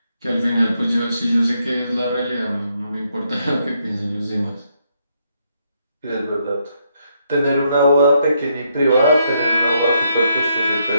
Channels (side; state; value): both; inverted; correlation -0.76